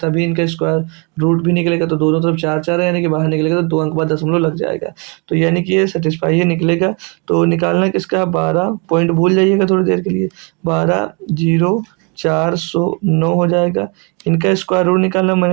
इनका स्क्वायर रूट भी निकलेगा, तो दोनों तरफ 4 4 है, यानी कि बाहर निकलेगा तो 2 अंक बाद दशमलव लग जाएगा, तो यानी कि ये सेटिस्फाई है निकलेगा। तो निकालना किसका, 12 पॉइंट भूल जाइएगा थोड़ी देर के लिए, 12,0409 हो जाएगा। इनका स्क्वायर रूट निकालना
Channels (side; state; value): left; quieter; 33.6 dB